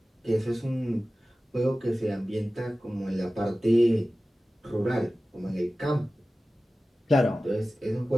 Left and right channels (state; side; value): normal; both; correlation 0.96